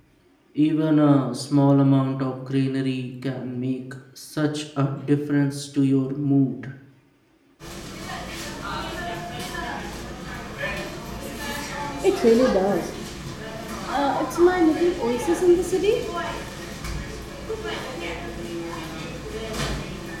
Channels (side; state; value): both; identical; correlation 1.00